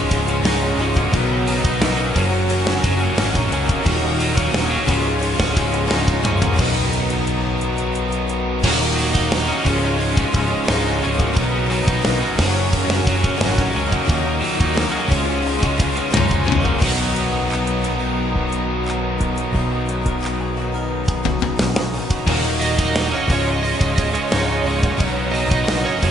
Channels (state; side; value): normal; both; correlation 0.74